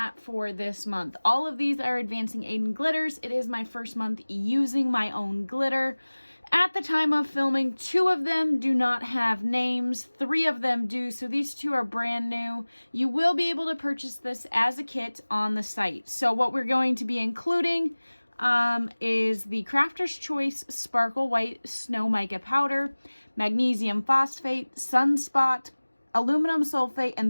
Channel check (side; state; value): both; inverted; correlation -1.00